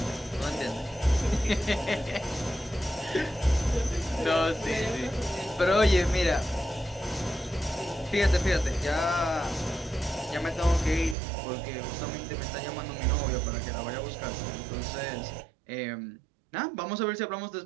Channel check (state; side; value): drops out; left; at 11.2 s